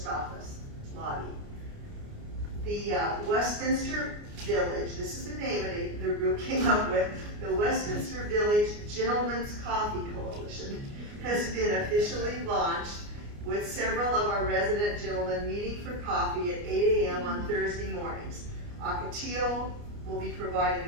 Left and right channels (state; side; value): late; left; 29 ms